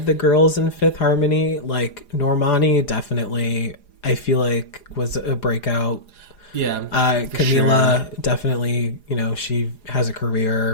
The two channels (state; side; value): late; right; 4.9 ms